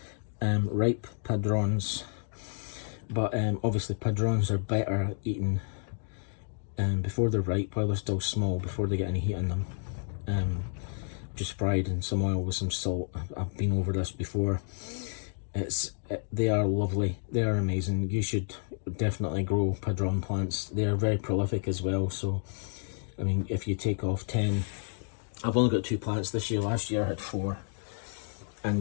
ripe padrons, but obviously padrons are better eaten before they're ripe, while they're still small, before they get any heat in them. Just fried in some oil with some salt. I've been over this before. They are lovely. They are amazing. You should definitely grow padron plants. They are very prolific as well. So, I mean, if you take off 10, I've only got 2 plants this year. Last year I had 4,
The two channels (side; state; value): right; silent; 58 dB below the other